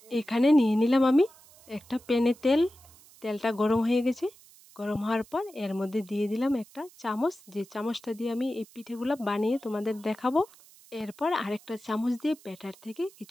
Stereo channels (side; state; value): right; noise; hiss, 25 dB below the sound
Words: এখানে নিয়ে নিলাম আমি একটা প্যানে তেলটা গরম হয়ে গেছে। গরম হওয়ার পর এর মধ্যে দিয়ে দিলাম একটা চামচ, যে চামচটা দিয়ে আমি এই পিঠেগুলো বানিয়ে তোমাদের দেখাবো। এরপর আরেকটা চামচ দিয়ে ব্যাটার থেকে